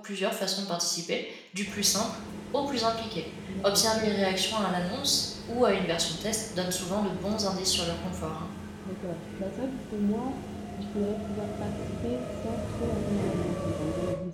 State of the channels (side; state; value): both; identical; correlation 1.00